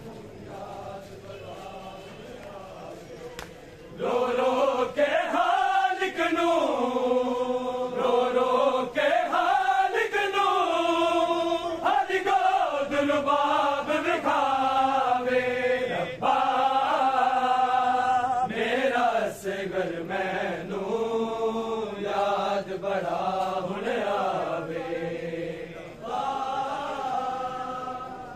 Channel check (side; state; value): both; identical; correlation 1.00